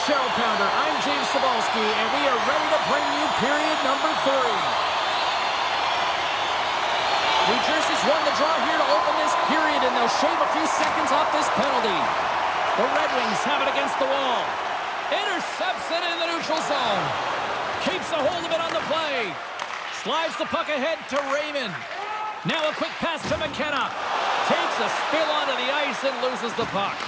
Cheryl Pounder. I'm James Cebulski, and we are ready to bring you period number 3. New Jersey's won the draw here to open this period, and they'll shave a few seconds off this penalty. The Red Wings have it against the wall. Intercepts it in the neutral zone. Keeps a hold of it on the play. Slides the puck ahead to Raymond. Now a quick pass to McKenna. Takes a spill onto the ice and loses the puck.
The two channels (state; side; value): identical; both; correlation 1.00